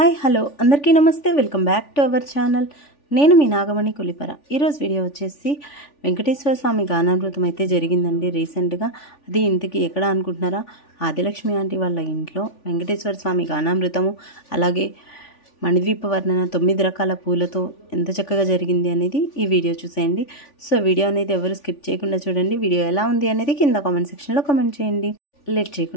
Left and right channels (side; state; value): right; late; 3.5 ms